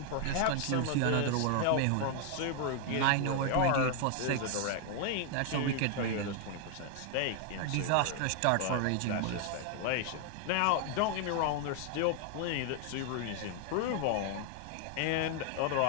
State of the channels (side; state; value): both; different; correlation 0.00